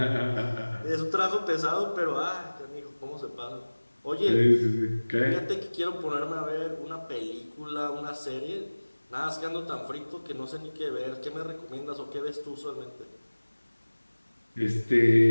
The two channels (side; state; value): both; inverted; correlation -1.00